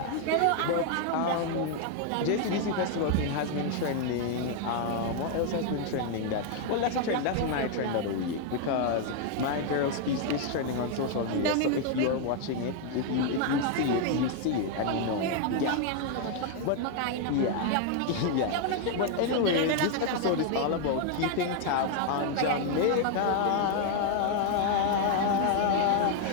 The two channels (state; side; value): different; both; correlation 0.00